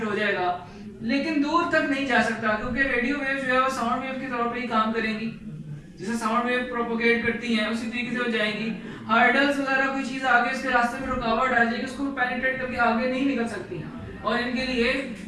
हो जाएगा, लेकिन दूर तक नहीं जा सकता, क्योंकि रेडियो वेव्स जो है वो साउंड वेव के तौर पे ही काम करेंगी। जैसे साउंड वेव प्रोपोगेट करती हैं उसी तरीके से हो जाएंगी। हर्डल्स वगैरह कोई चीज आगे इसके रास्ते में रुकावट आ जाएगी, उसको पेनिट्रेट करके आगे नहीं निकल सकती। और इनके लिए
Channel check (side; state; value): both; identical; correlation 1.00